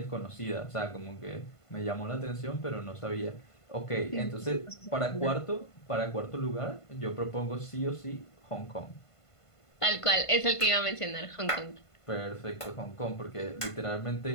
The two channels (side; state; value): right; late; 1.5 ms